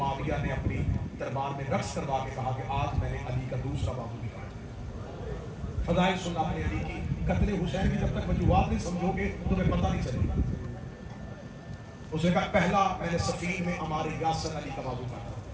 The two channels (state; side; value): identical; both; correlation 1.00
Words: نے اپنی دربار میں رقص کروا کے کہا کہ آج میں نے علی کا دوسرا بازو نکالا. فضائل سننا اپنے علی کی. قتل حسین کی جب تک وجوہات نہیں سمجھو گے تمہیں پتہ نہیں چلے گا. اس نے کہا پہلا میں نے سفین میں ہمارے یاسر علی کا بازو کاٹا,